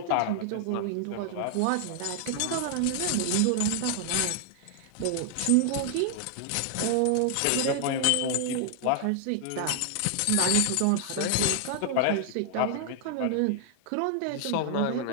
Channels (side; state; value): both; different; correlation 0.00